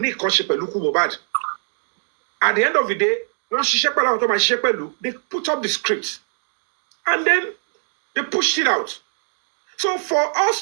Nick Konshepeluku Mohbad. At the end of the day, once they put up the script. And then they pushed it out. So for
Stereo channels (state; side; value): silent; left; digital silence